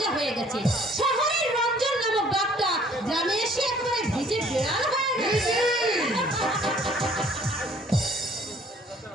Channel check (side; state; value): both; normal; correlation 0.57